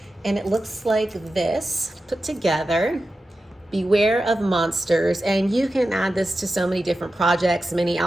and it looks like this put together. Beware of monsters, and you can add this to so many different projects, mini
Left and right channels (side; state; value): both; normal; correlation 0.92